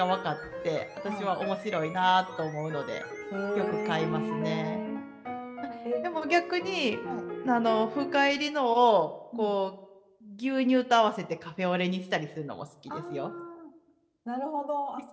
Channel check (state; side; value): identical; both; correlation 1.00